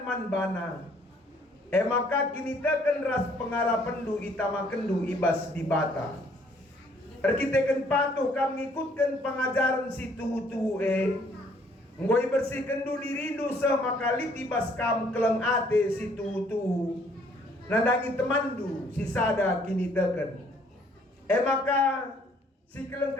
manbana. Maka kini teken ras pengarapendu itamakendu ibas di bata. Kita patuh kami ikutkan pengajaran si tuhu-tuhu Ngoi bersihkan du dirindu maka litibas kam keleng ate si tuhu-tuhu. Nandangi temandu si sada kini teken. Maka si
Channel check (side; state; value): both; normal; correlation 0.63